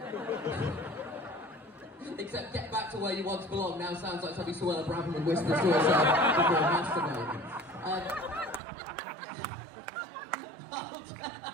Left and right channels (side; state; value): left; drops out; at 8.6 s